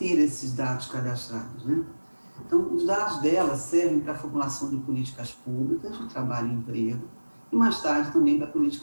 esses dados cadastrados, né? Então, os dados dela servem para a formulação de políticas públicas de trabalho e emprego e, mais tarde, também para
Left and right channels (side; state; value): both; inverted; correlation -1.00